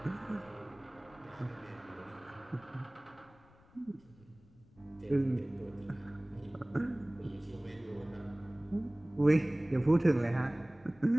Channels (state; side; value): noise; left; rumble, 27 dB below the sound